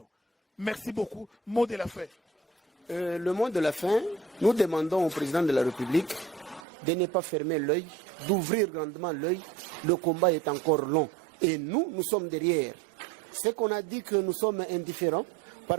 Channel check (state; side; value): drops out; left; at 6.7 s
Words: Merci beaucoup. Mot de la fin. Le mot de la fin, nous demandons au président de la République de ne pas fermer l'œil, d'ouvrir grandement l'œil. Le combat est encore long. Et nous sommes derrière. C'est qu'on a dit que nous sommes indifférents.